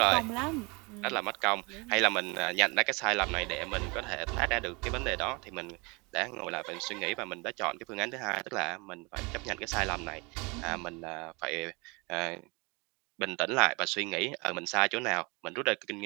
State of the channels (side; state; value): left; quieter; 27.9 dB